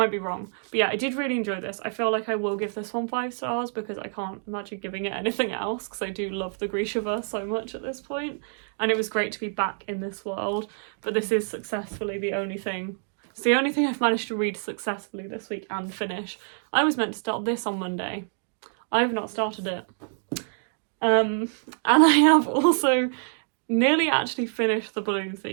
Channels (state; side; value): silent; left; digital silence